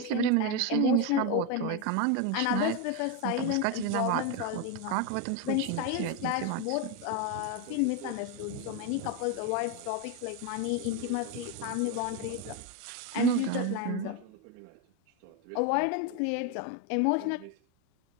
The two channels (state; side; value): different; both; correlation 0.03